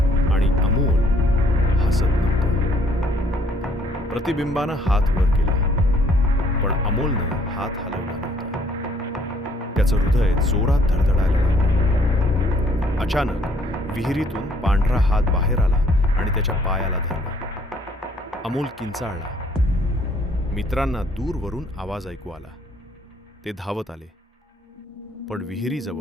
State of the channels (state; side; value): normal; both; correlation 0.63